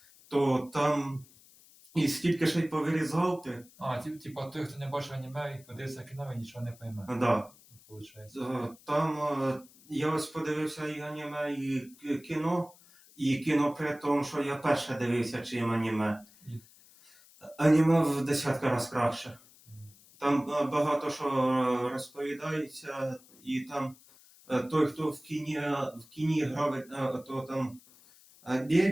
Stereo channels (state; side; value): noise; left; hiss, 25 dB below the sound